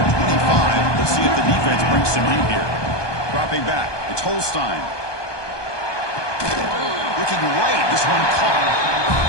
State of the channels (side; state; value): right; late; 1.2 ms